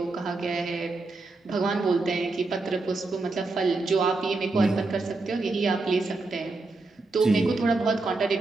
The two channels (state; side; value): quieter; left; 3.4 dB